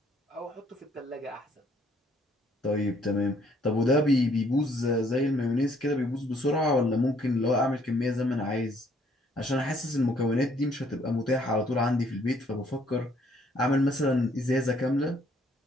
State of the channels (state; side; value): normal; both; correlation 0.65